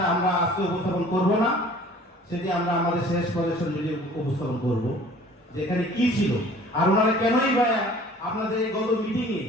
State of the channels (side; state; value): both; normal; correlation 0.50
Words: আমরা আজকে উপস্থাপন করব না, সেটি আমরা আমাদের শেষ প্রদর্শন ভিডিও উপস্থাপন করব, যেখানে কি ছিল আর ওনারা কেনই বা আপনাদের এই গত মিটিংয়ে